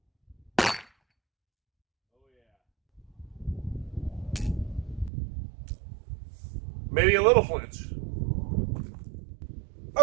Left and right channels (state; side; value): drops out; left; at 5.1 s